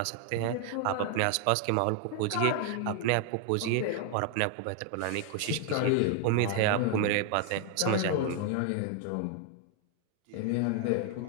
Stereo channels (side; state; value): both; different; correlation 0.00